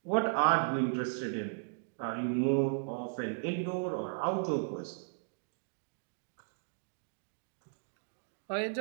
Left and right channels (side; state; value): left; silent; digital silence